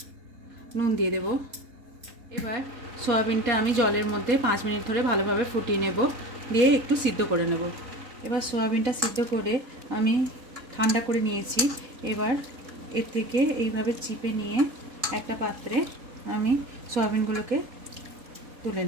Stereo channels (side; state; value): left; late; 4.2 ms